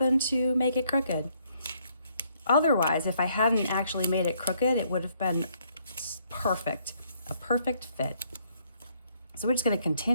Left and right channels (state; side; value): inverted; both; correlation -0.69